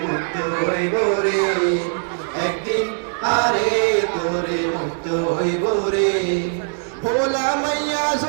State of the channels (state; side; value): silent; left; 65 dB below the other